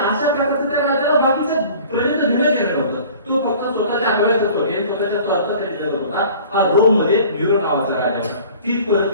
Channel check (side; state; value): both; inverted; correlation -0.47